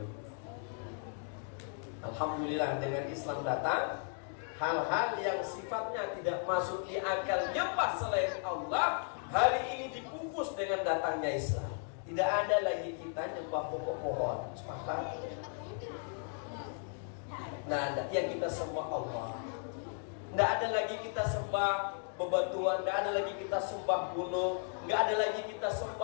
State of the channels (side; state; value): right; silent; 54 dB below the other